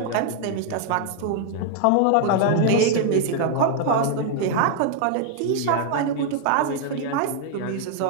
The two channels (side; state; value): both; different; correlation 0.00